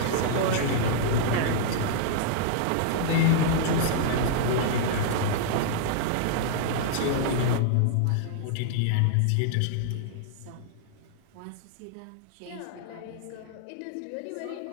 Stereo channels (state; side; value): different; both; correlation -0.01